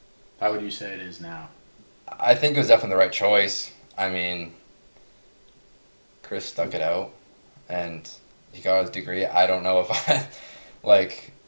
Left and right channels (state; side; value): inverted; both; correlation -1.00